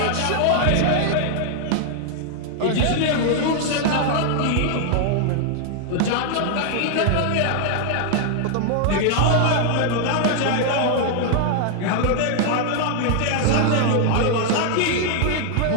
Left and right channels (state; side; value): different; both; correlation 0.00